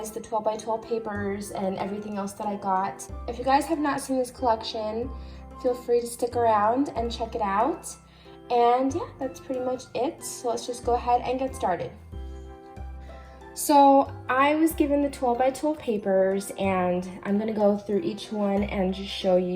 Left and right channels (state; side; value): identical; both; correlation 1.00